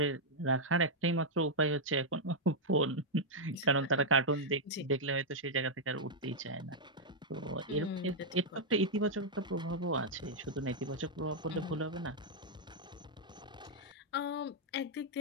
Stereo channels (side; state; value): both; normal; correlation -0.04